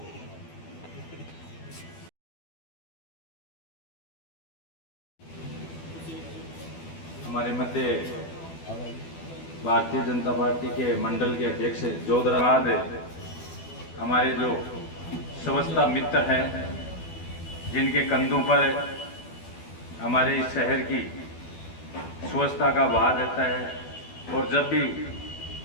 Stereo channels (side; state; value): right; late; 12 ms